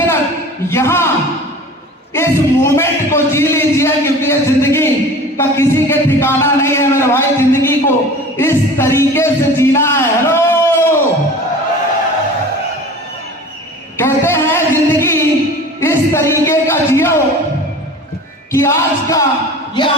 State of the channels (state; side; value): normal; both; correlation 0.40